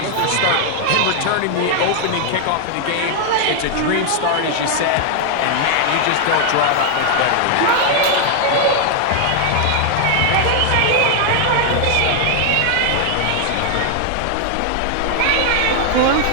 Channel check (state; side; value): different; both; correlation 0.00